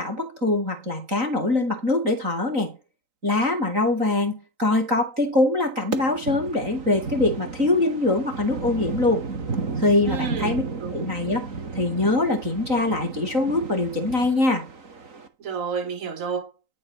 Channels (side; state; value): left; late; 3.9 ms